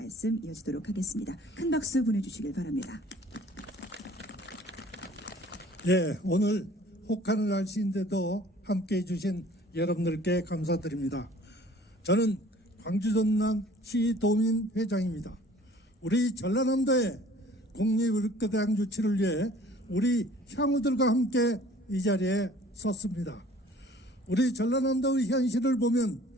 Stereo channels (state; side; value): normal; both; correlation 0.51